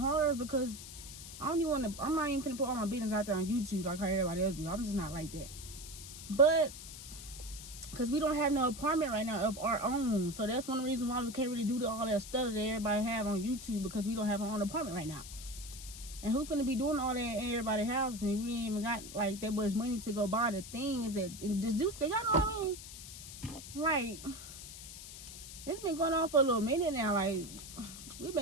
is because I'm not even finna put all my business out there on YouTube like how everybody else do. I'm just not like that. But because we don't have no apartment right now of our own. So that's one of the reasons why we can't really do all that stuff that everybody have on YouTube, because we don't have our own apartment right now. And who finna be doing all that in everybody's house and we ain't even got like that much money to go buy the things that and just do stuff. Y'all know what I mean? Like, it's been going on for a little minute now. Like, we've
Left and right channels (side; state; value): left; noise; hiss, 12 dB below the sound